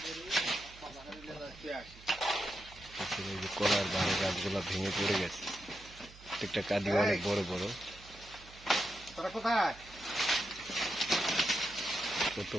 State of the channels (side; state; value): right; noise; hum, 20 dB below the sound